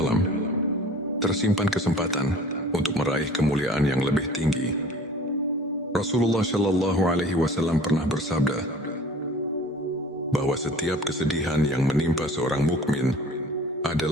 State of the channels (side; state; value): both; normal; correlation 0.46